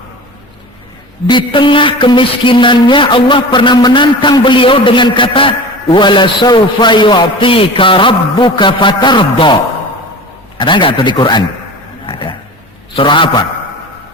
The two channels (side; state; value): both; normal; correlation 0.35